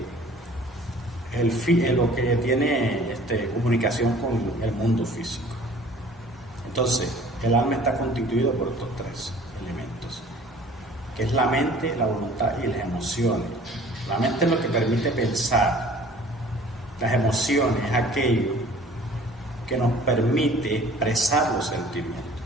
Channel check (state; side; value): normal; both; correlation 0.50